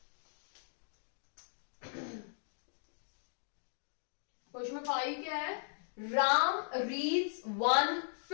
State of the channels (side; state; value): right; silent; digital silence